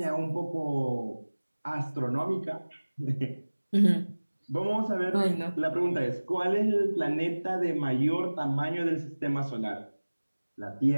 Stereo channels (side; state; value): both; inverted; correlation -1.00